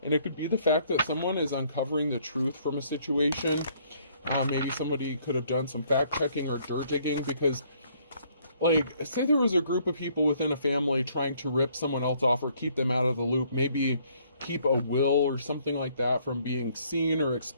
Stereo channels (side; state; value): both; inverted; correlation -0.64